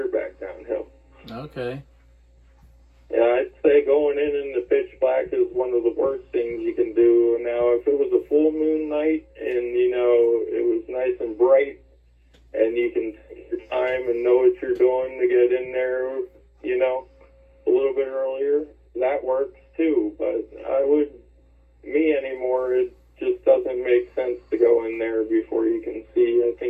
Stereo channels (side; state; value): both; identical; correlation 1.00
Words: back downhill. Okay. Yeah, I'd say going in the pitch black is one of the worst things you can do. Now, if it was a full moon night and, it was nice and bright and you can take your time and know what you're doing to get in there, a little bit earlier, that works too. But me anymore, it just doesn't make sense to go in there before you can see. I